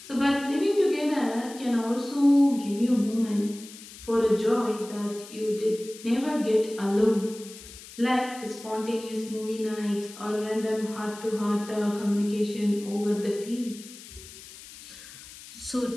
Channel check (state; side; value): noise; left; hiss, 17 dB below the sound